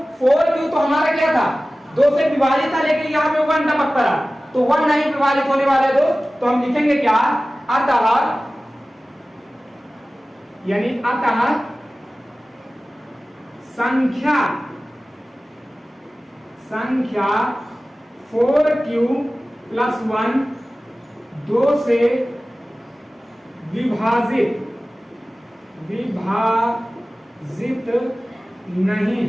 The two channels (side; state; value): both; normal; correlation 0.97